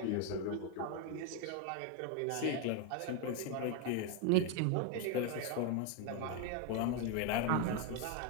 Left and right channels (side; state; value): both; different; correlation 0.01